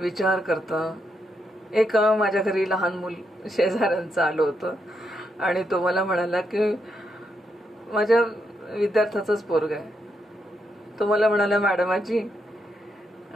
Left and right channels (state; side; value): normal; both; correlation 0.80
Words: करतं. एक माझ्या घरी लहान मूल शेजाऱ्यांचं आलं होतं आणि तो मला म्हणाला की माझ्या विद्यार्थ्याचंच पोरग आहे. तो मला म्हणाला, मॅडम आजी